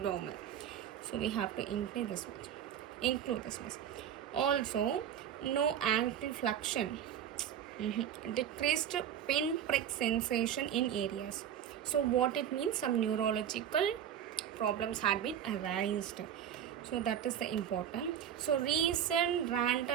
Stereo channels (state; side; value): quieter; left; 9.5 dB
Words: So we have to include this much. Also, no ankle flexion. Decreased pinprick sensation in areas. So what it means, some neurological problems had been arised. So that is the important. So recent